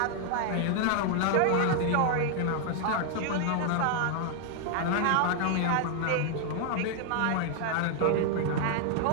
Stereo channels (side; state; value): both; different; correlation 0.00